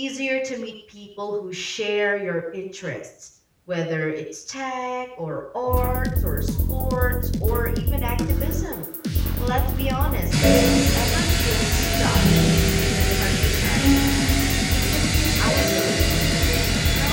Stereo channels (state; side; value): identical; both; correlation 1.00